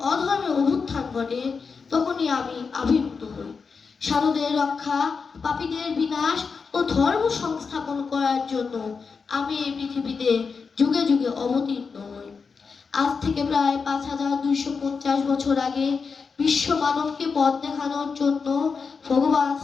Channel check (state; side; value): quieter; right; 5.2 dB